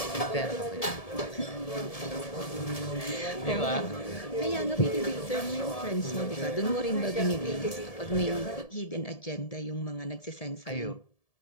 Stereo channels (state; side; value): late; right; 1.7 ms